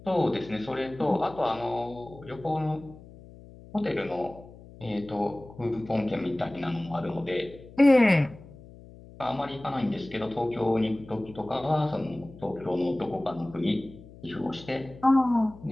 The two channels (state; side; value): noise; left; hum, 19 dB below the sound